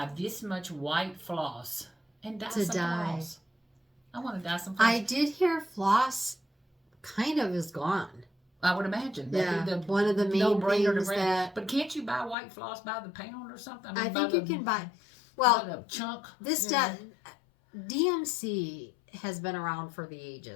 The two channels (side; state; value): right; drops out; at 12.4 s